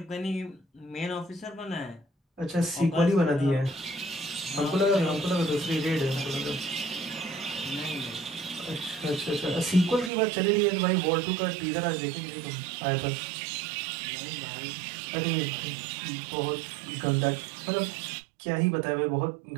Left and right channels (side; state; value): left; drops out; at 10.1 s